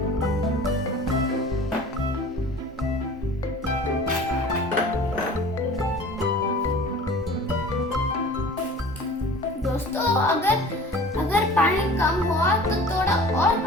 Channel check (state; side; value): normal; both; correlation 0.43